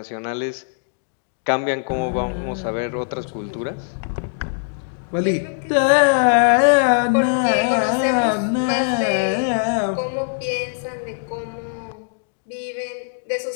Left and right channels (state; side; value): silent; right; digital silence